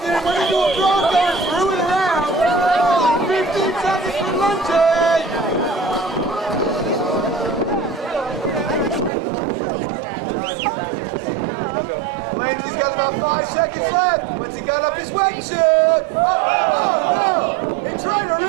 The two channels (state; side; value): drops out; left; at 9.1 s